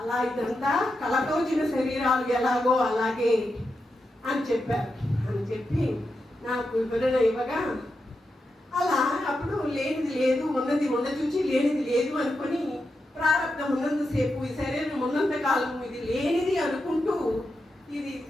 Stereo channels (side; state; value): both; normal; correlation 0.88